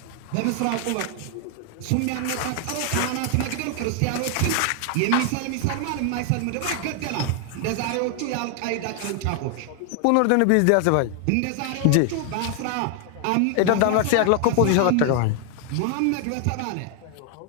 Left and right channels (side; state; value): both; different; correlation 0.00